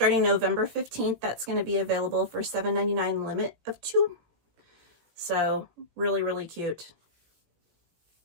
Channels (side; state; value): left; late; 18 ms